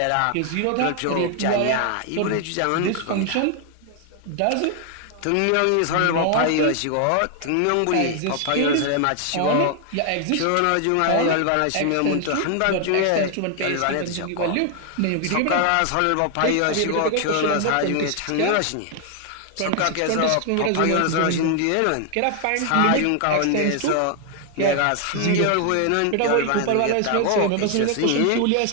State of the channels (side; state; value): both; different; correlation 0.00